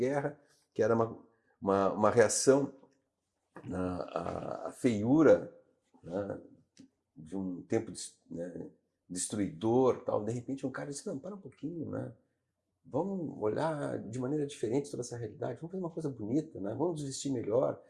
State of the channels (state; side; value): identical; both; correlation 1.00